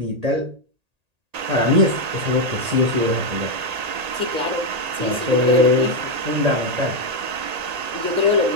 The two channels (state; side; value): late; left; 1.8 ms